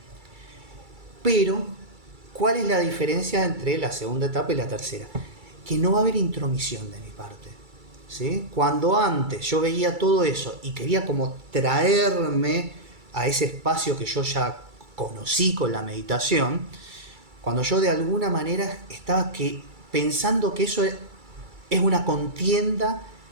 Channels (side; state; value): left; late; 2.3 ms